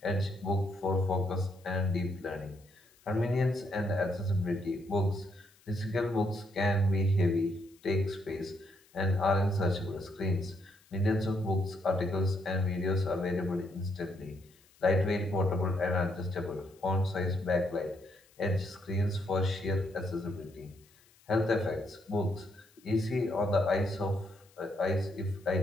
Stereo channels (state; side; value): noise; left; hiss, 30 dB below the sound